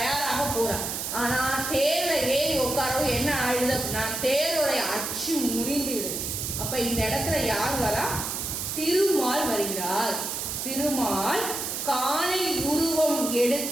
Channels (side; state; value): right; noise; hiss, 3 dB below the sound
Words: போறான். ஆனா தேர்ல ஏறி உட்காரவும் என்ன ஆயிடுது அப்படின்னா தேரோடைய அச்சு முறிந்து விடுது. அப்ப இந்த இடத்துல யார் வரா, திருமால் வருகிறார். திருமால் காலை உருவம்